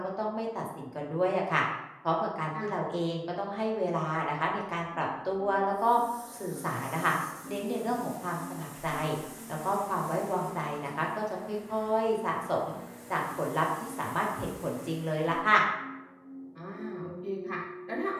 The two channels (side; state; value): both; identical; correlation 1.00